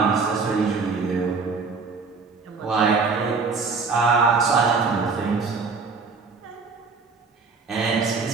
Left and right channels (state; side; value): quieter; left; 4.6 dB